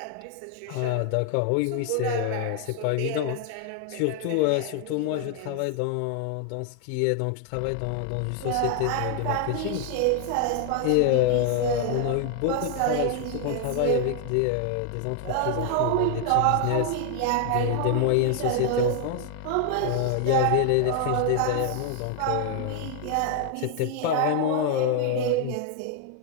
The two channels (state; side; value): different; both; correlation 0.00